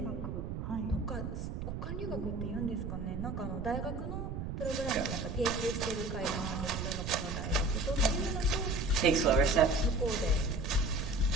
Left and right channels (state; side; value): noise; right; rumble, 5 dB below the sound